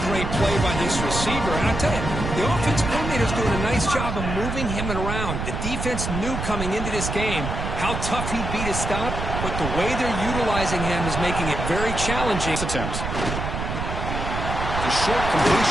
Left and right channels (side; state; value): right; noise; rumble, 4 dB below the sound